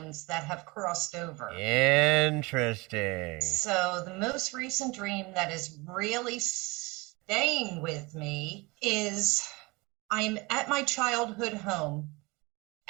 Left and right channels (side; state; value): left; quieter; 24.8 dB